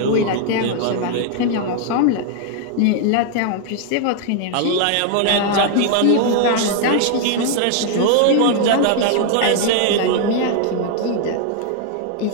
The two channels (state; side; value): different; both; correlation 0.00